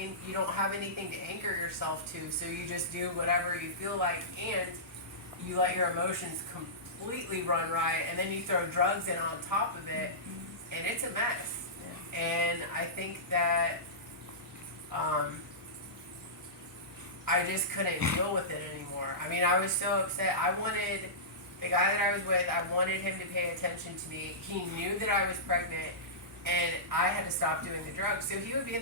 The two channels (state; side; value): normal; both; correlation -0.18